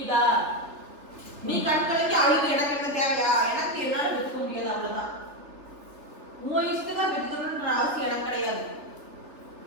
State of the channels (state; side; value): late; left; 3.5 ms